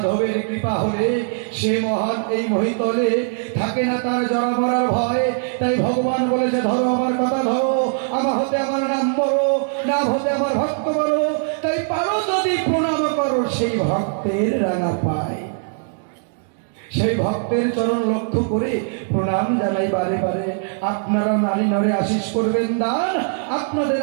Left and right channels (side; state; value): left; silent; digital silence